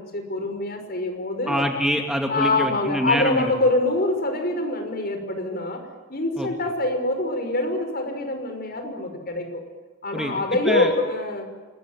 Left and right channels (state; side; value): normal; both; correlation 0.08